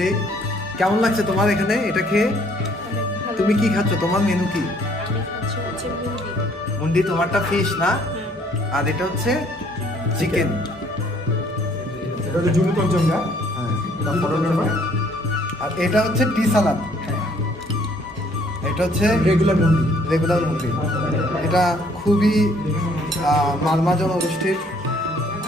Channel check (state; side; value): normal; both; correlation 0.62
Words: কেমন লাগছে তোমার এখানে এটা খেয়ে? তুমি কি খাচ্ছ? তোমার মেনু কি? মুন্ডি। তোমারটা ফিশ না, আর এটা হচ্ছে চিকেন। এটা হচ্ছে জুনু পঞ্চমটা। হ্যাঁ, আর এটা হচ্ছে টি সালাদ। এটা হচ্ছে রেগুলার মুন্ডি। রেগুলার মুন্ডি। এটা খুবই মালমা জনগোষ্ঠীর